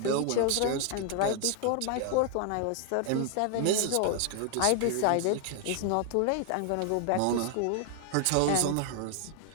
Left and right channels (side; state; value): both; different; correlation 0.00